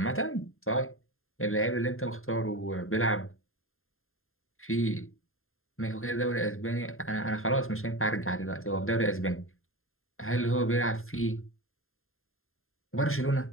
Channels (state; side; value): late; right; 0.61 ms